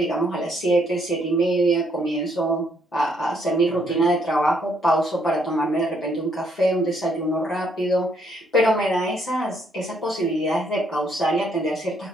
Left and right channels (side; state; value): both; normal; correlation 0.70